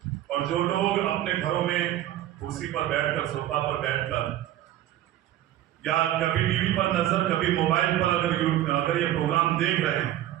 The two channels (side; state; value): left; quieter; 13.0 dB